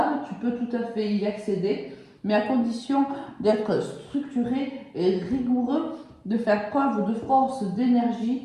tu peux tout à fait y accéder, mais à condition d'être structuré et rigoureux, de faire preuve de force, d'énergie,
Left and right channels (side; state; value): both; identical; correlation 1.00